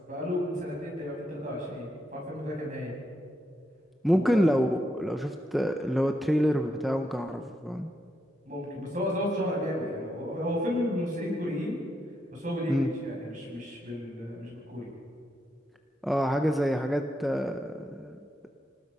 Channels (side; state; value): both; normal; correlation 0.81